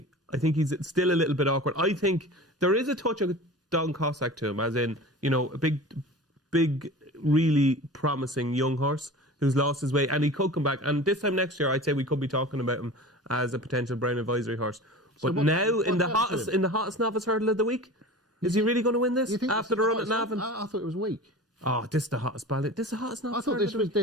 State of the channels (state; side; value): normal; both; correlation 0.36